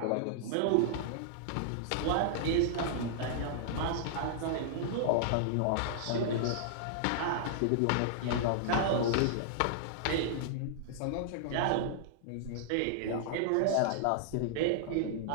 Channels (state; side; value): different; both; correlation -0.01